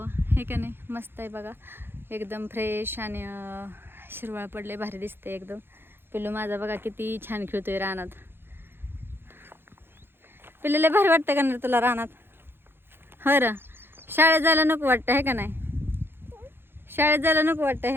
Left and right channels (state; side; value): late; left; 0.10 ms